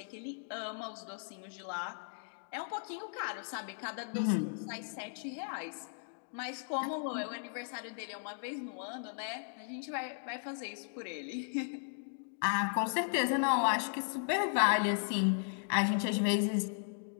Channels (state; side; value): silent; right; digital silence